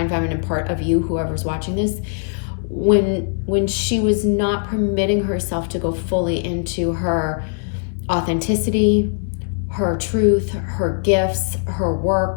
feminine part of you, whoever's watching this, when she was not permitting herself to go fully into her authenticity, her truth, her gifts, her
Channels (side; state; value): right; silent; digital silence